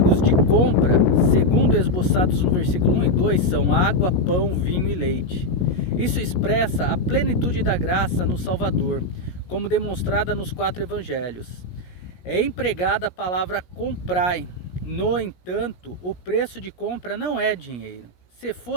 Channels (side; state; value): right; late; 17 ms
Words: de compra, segundo esboçados no versículo 1 e 2, são água, pão, vinho e leite. Isso expressa a plenitude da graça no Salvador, como demonstrada nos 4 evangelhos. É empregada a palavra comprai. No entanto, o preço de compra não é dinheiro. Se